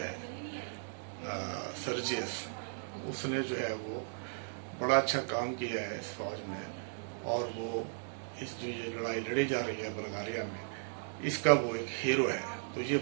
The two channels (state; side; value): silent; left; digital silence